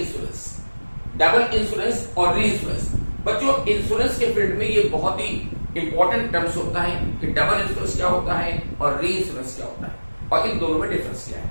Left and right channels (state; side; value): inverted; both; correlation -1.00